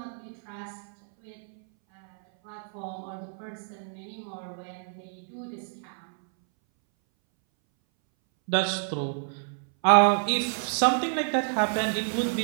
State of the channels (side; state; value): left; silent; 59 dB below the other